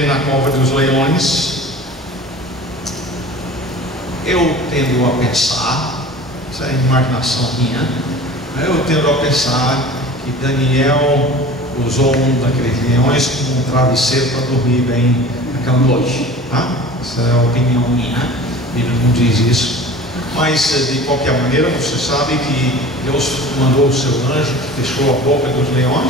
na cova dos leões. Eu tendo a pensar, isso é imaginação minha, eu tendo a pensar que Daniel usou um daqueles leões como um travesseiro para dormir bem naquela noite, tá? Essa é a opinião minha, a Bíblia não diz isso, mas de qualquer maneira você sabe que Deus mandou o seu anjo que fechou a boca dos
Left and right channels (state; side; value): normal; both; correlation 0.40